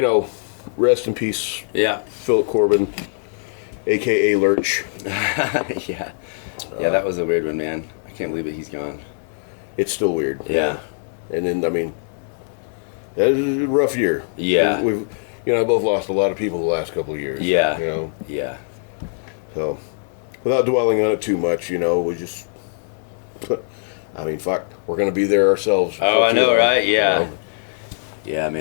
know, rest in peace. Yeah. Philip Corbin, a.k.a. Lurch. Yeah. Yeah, that was a weird one, man. I can't believe it. He's gone. It's still weird. Yeah. And then, I mean, that was a rough year. Yeah. We've you know, both lost a lot of people the last couple of years. Yeah. You know? Yeah. So, without dwelling on it too much, you know, we just, I mean, fuck, we're going to be there ourselves. Oh, I know, right? Yeah. You know? Yeah,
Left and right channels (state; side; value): silent; right; 62 dB below the other